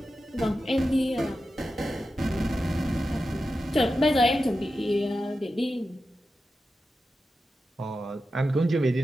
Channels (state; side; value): normal; both; correlation 0.91